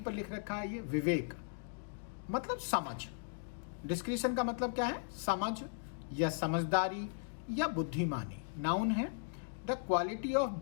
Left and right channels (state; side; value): silent; right; digital silence